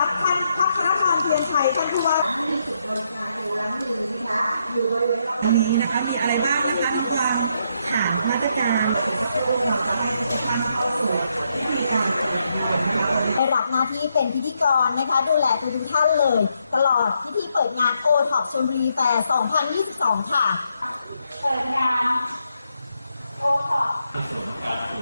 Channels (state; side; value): inverted; both; correlation -0.78